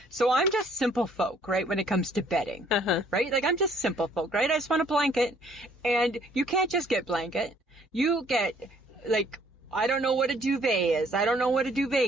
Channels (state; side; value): normal; both; correlation 0.62